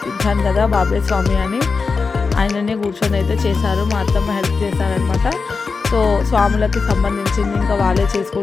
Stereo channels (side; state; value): right; quieter; 4.7 dB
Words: కదా బాబాయ్ స్వామి అని, ఆయననే కూర్చొని అయితే చేశారు. మా అత్తమ్మ హెల్ప్ చేశారనమాట. సో స్వాములకి సంబంధించింది ఇంకా వాళ్ళే